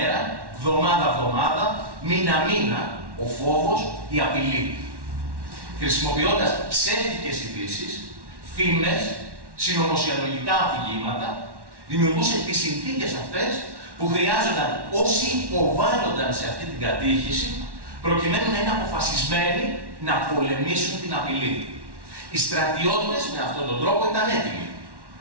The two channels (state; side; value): late; left; 1.1 ms